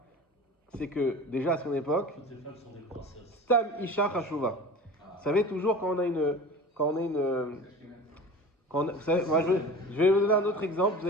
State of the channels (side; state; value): both; normal; correlation 0.37